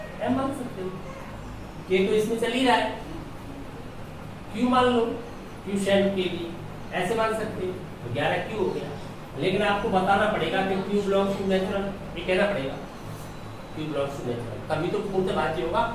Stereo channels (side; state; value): both; identical; correlation 1.00